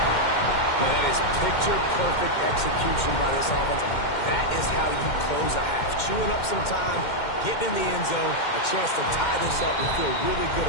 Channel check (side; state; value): right; late; 2.1 ms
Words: Man, that is picture-perfect execution by this offense. That is how you close a half. Chewing up some time, getting in the end zone, a chance to tie this up and feel really good